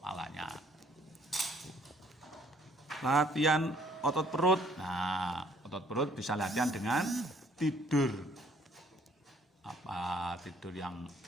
Latihan otot perut. Nah, otot perut bisa latihan dengan tidur. Tidur yang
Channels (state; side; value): normal; both; correlation 0.62